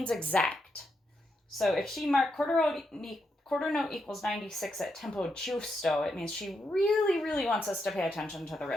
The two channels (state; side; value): normal; both; correlation 0.82